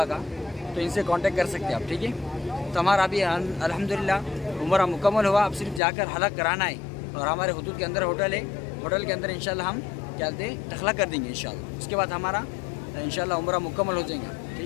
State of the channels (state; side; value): drops out; right; at 5.8 s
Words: का, तो इनसे कांटेक्ट कर सकते हैं आप, ठीक है। तो हमारा अभी अल्हम्दुलिल्लाह उम्रा मुकम्मल हुआ। अब सिर्फ जाकर हलक कराना है और हमारे हुदूद के अंदर होटल है। होटल के अंदर इंशाल्लाह हम क्या बोलते हैं टखला कर देंगे इंशाल्लाह। उसके बाद हमारा इंशाल्लाह उम्रा मुकम्मल हो जाएगा,